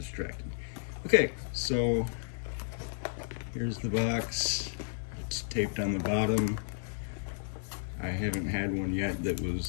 Okay, so here's the box. It's taped on the bottom. I haven't had one yet that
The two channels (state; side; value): silent; right; digital silence